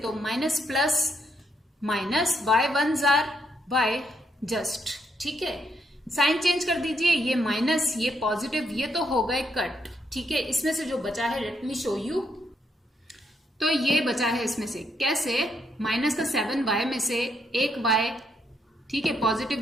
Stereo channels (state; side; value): normal; both; correlation 0.76